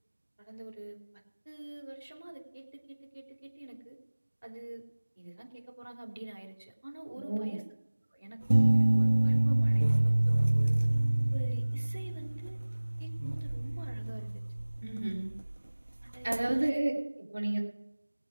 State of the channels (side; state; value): both; inverted; correlation -1.00